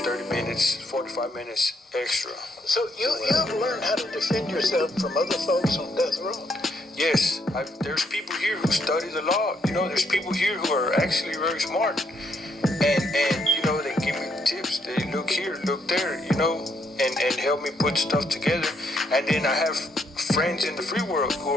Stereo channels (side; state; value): both; normal; correlation 0.74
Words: minutes, 45 minutes extra. So you have learned how to defend yourself from other folks on death row? Yes, there's people here who study the law. There's people here who are actually very smart. And they give me tips. They look here, look there, and help me put stuff together. And then I have friends in the free world who